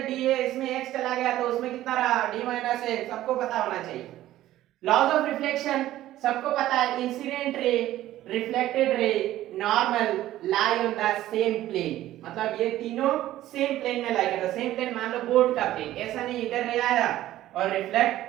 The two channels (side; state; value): left; quieter; 14.3 dB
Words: d है इसमें x चला गया तो उसमें कितना रहा, d माइनस a। सबको पता होना चाहिए लॉज ऑफ रिफ्लेक्शन, सबको पता है incident ray, reflected ray, normal lie on the same plane. मतलब ये तीनों सेम प्लेन में लाई करता है। सेम प्लेन मान लो बोर्ड का प्लेन, ऐसा नहीं इधर रे आया और